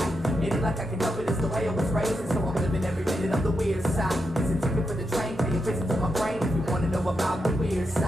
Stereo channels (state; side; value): normal; both; correlation 0.85